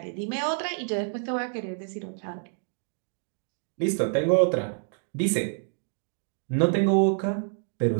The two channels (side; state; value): left; silent; 59 dB below the other